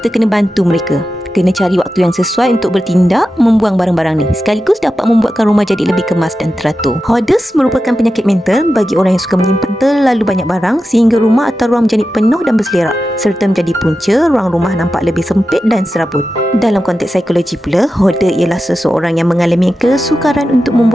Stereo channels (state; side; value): normal; both; correlation 0.91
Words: kena bantu mereka. Kena cari waktu yang sesuai untuk bertindak membuang barang-barang ni, sekaligus dapat membuatkan rumah jadi lebih kemas dan teratur. Hoarders merupakan penyakit mental bagi orang yang suka menyimpan terlalu banyak barang sehingga rumah atau ruang menjadi penuh dan berselerak, serta menjadi punca ruang rumah nampak lebih sempit dan serabut. Dalam konteks psikologi pula, hoarder ialah seseorang yang mengalami kesukaran untuk